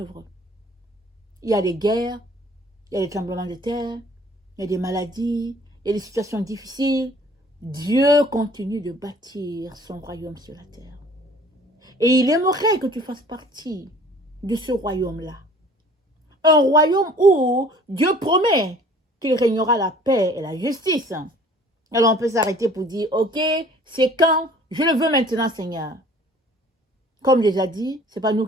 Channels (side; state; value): both; normal; correlation 0.51